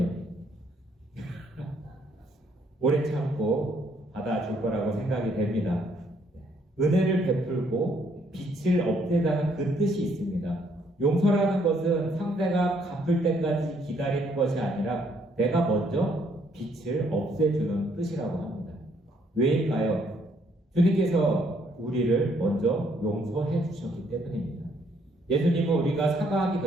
오래 참고 받아줄 거라고 생각이 됩니다. 은혜를 베풀고 빛을 없애자는 그 뜻이 있습니다. 용서라는 것은 상대가 갚을 때까지 기다리는 것이 아니라 내가 먼저 빛을 없애주는 뜻이라고 합니다. 왜일까요? 주님께서 우리를 먼저 용서해 주셨기 때문입니다. 예수님은 우리가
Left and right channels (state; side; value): normal; both; correlation 0.68